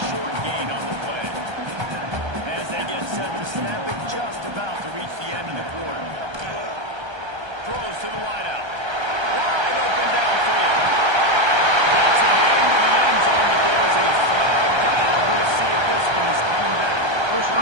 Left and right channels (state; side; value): late; left; 1.3 ms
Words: short gain on the play. As they get set to snap it, just about to reach the end of the quarter. Throws to the wideout. Wide open downfield. Gets it into the end zone, but there's a flag down. We'll see if this one is coming back.